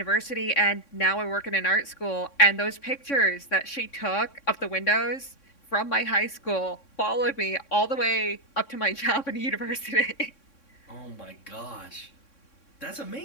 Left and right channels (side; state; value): right; late; 3.6 ms